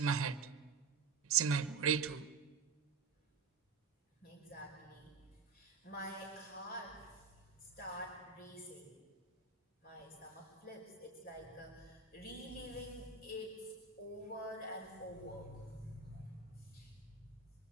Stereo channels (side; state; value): left; quieter; 5.0 dB